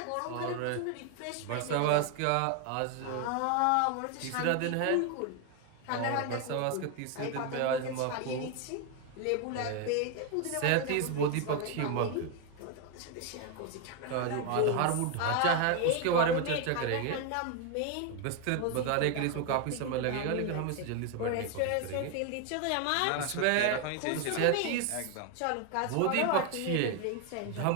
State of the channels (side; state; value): both; different; correlation 0.01